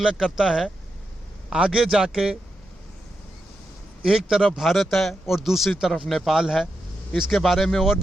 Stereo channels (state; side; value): normal; both; correlation 0.86